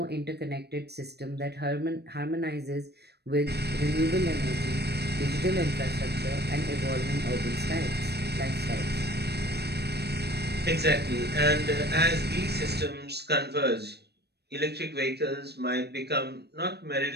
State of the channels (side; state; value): left; late; 0.48 ms